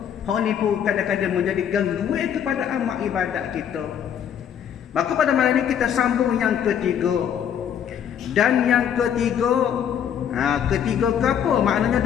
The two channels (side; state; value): right; quieter; 8.8 dB